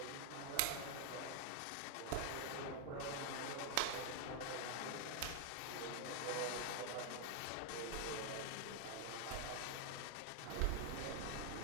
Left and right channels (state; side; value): different; both; correlation 0.00